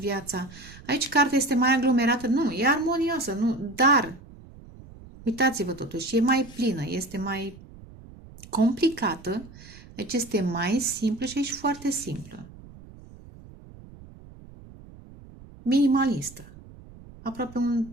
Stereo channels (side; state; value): right; noise; rumble, 19 dB below the sound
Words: Aici cartea este mai aglomerată. Nu, e armonioasă, nu, dar uitați-vă totuși, e mai plină, este mai complicată. Deci este mai simplă și aici foarte simplă. Minimalistă. Aproape un